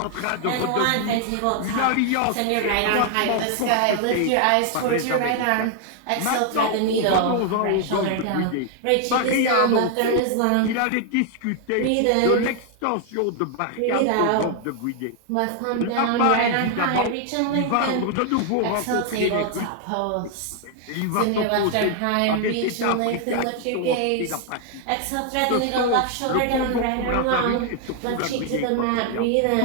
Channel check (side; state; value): both; different; correlation 0.00